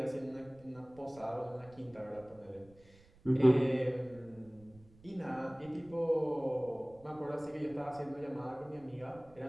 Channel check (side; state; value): right; noise; rumble, 25 dB below the sound